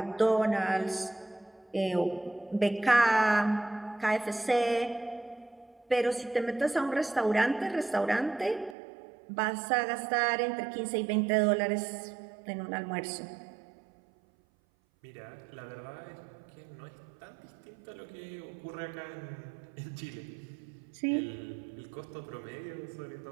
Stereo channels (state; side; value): drops out; left; at 8.8 s